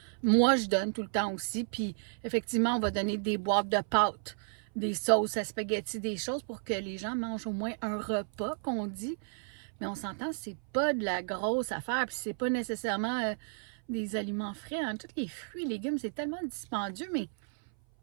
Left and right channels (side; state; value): left; silent; 56 dB below the other